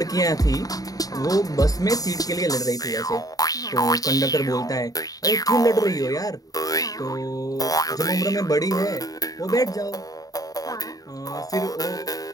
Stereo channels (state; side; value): late; right; 0.18 ms